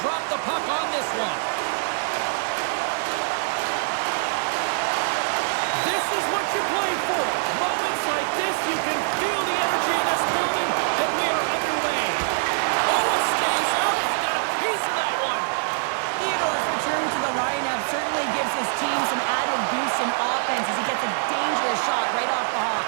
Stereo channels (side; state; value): left; silent; digital silence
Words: drop the puck on this one. This is what you play for. Moments like this, you can feel the energy in this building, and we are underway. Oh, it stays out. We got a piece of that one. Theodore's return to the lineup certainly gives his team some added boost in offense as he gets a dangerous shot right off the hop.